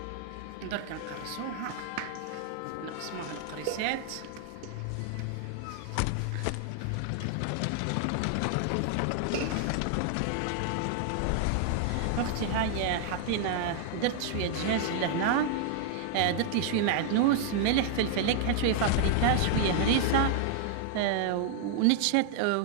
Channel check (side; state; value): both; different; correlation 0.00